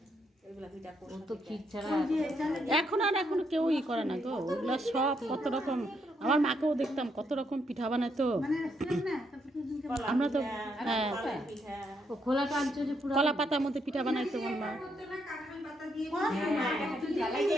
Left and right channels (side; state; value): both; normal; correlation 0.76